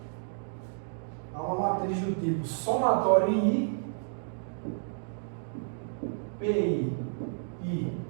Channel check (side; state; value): left; silent; digital silence